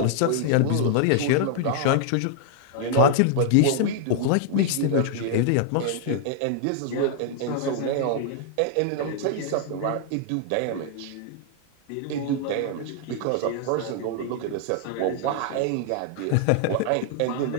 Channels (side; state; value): both; different; correlation -0.01